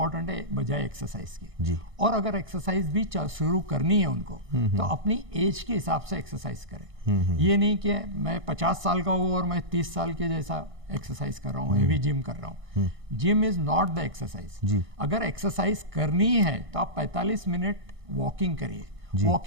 है बजाय एक्सरसाइज के। और अगर एक्सरसाइज भी शुरू करनी है उनको तो अपनी एज के हिसाब से एक्सरसाइज करें। ये नहीं कि मैं 50 साल का हूँ और मैं 30 साल के जैसा एक्सरसाइज कर रहा हूँ, हेवी जिम कर रहा हूँ। Gym is not the exercise. अगर एक्सरसाइज करनी है तो आप 45 मिनट वॉकिंग करिए।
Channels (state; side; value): late; left; 1.6 ms